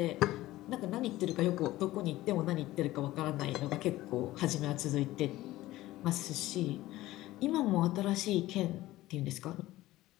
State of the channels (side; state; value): right; quieter; 16.7 dB